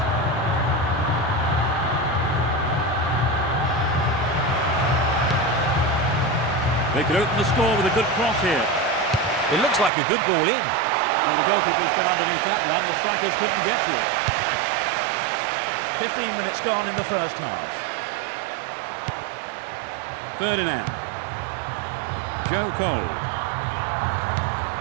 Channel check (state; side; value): drops out; left; at 9.9 s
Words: They could open the score with a good cross here. It looks like a good ball in. Well, the goalkeeper's been underneath that one. The strikers couldn't get to it. 15 minutes gone in the first half. Ferdinand. Joe Cole.